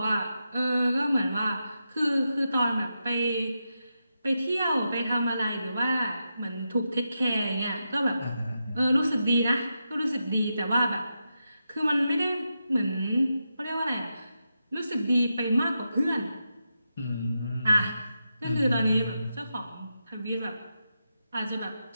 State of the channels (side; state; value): both; inverted; correlation -0.87